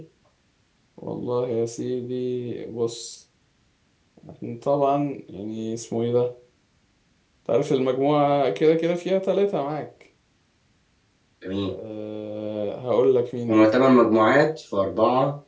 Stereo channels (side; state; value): both; identical; correlation 1.00